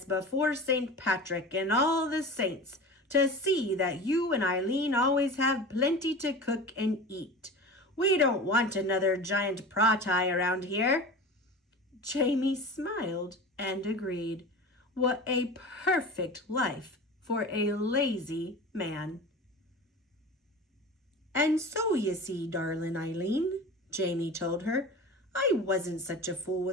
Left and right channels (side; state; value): both; normal; correlation 0.33